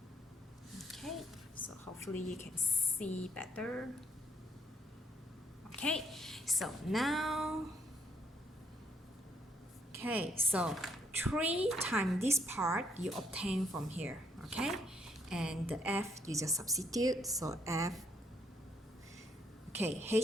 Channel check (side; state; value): both; normal; correlation 0.70